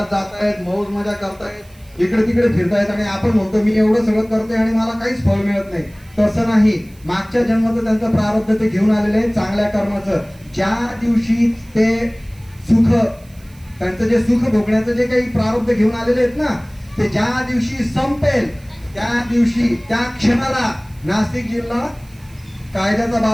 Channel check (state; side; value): noise; right; hiss, 28 dB below the sound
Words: जातायत, मौज मजा करतायत, इकडे तिकडे फिरतायत, आणि आपण म्हणतो मी एवढं सगळं करते आणि मला काहीच फळ मिळत नाही. तसं नाही. मागच्या जन्माचं त्यांचं प्रारब्ध ते घेऊन आलेले आहे, चांगल्या कर्माचं. ज्या दिवशी ते सुख, त्यांचं जे सुख भोगण्याचं जे काही प्रारब्ध घेऊन आलेले आहेत ना, ते ज्या दिवशी संपेल त्या दिवशी, त्या क्षणाला नाशिक जिल्हा कायद्याचा